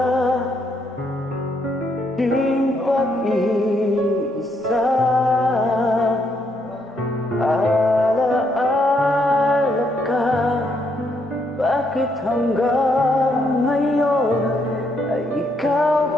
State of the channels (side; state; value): both; normal; correlation 0.75